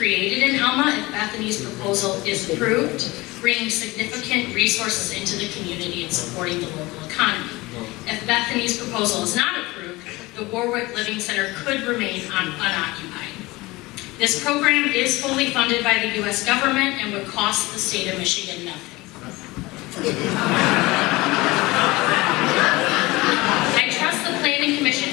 in Alma if Bethany's proposal is approved, bringing significant resources into the community and supporting the local economy. If Bethany's proposal is not approved, the Warwick Living Center could remain unoccupied. This program is fully funded by the U.S. government and would cost the state of Michigan nothing. I trust the Planning Commission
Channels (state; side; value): quieter; right; 21.4 dB